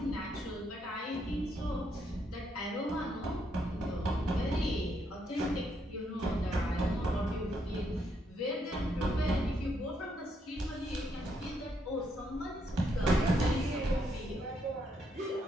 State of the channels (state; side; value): normal; both; correlation 0.76